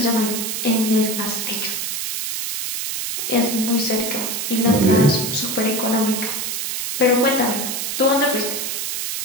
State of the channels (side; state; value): right; noise; hiss, 3 dB below the sound